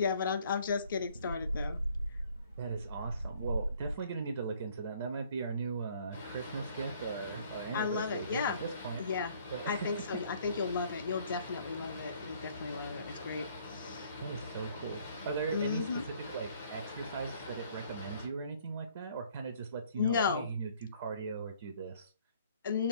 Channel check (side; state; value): both; inverted; correlation -0.60